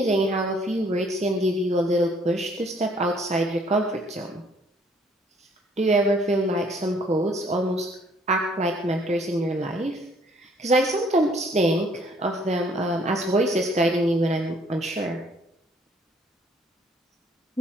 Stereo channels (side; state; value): both; normal; correlation 0.62